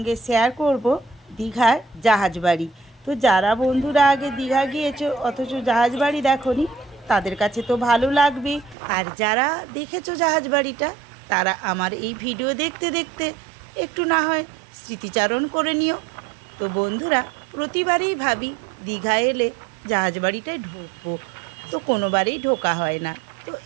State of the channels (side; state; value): left; drops out; at 8.8 s